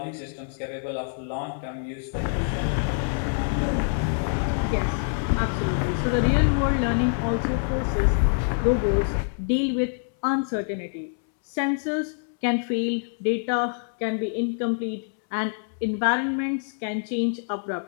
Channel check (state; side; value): silent; right; 61 dB below the other